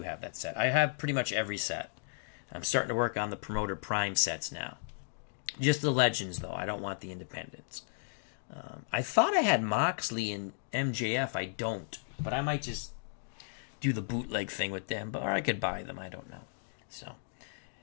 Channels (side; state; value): right; silent; digital silence